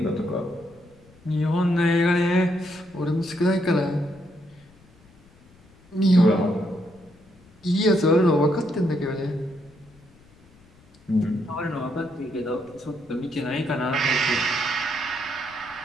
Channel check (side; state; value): left; noise; rumble, 28 dB below the sound